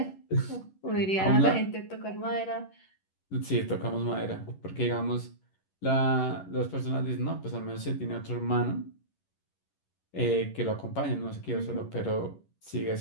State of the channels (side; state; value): right; late; 11 ms